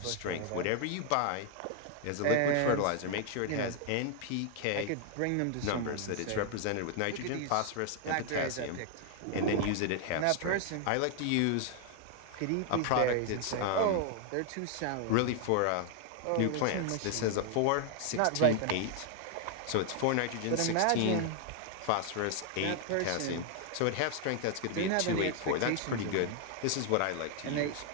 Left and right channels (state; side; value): different; both; correlation 0.00